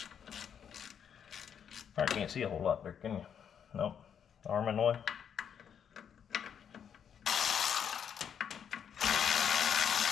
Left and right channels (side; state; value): right; quieter; 8.1 dB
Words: I can't see a whole lot there, can you? Nope. Arm in the way.